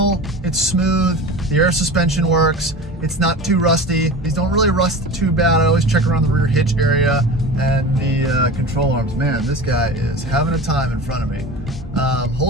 it's smooth, the air suspension works, it's not too rusty. These don't really rust too bad. I always check around the rear hitch area and the control arms. Man, this guy is having a time in front of me.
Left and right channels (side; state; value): both; normal; correlation 0.33